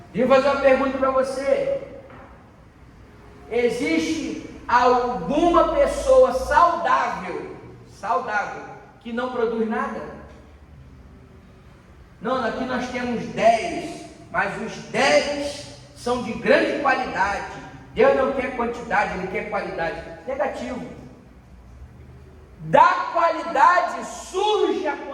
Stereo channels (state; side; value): identical; both; correlation 1.00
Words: Deixa eu fazer uma pergunta para você. Existe alguma pessoa saudável, que não produz nada? Não, aqui nós temos 10, mas os 10 são de grande qualidade. Deus não quer quantidade, Ele quer qualidade. Negativo. Da qualidade surge a